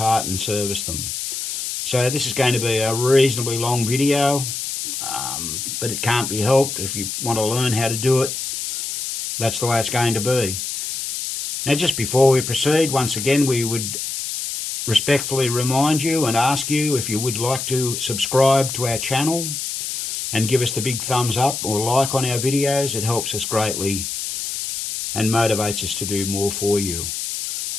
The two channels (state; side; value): noise; left; hiss, 4 dB below the sound